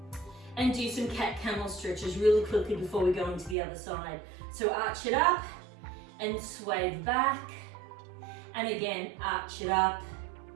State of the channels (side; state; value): left; drops out; at 3.6 s